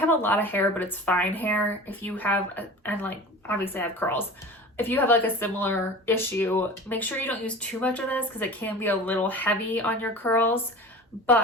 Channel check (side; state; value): both; normal; correlation 0.36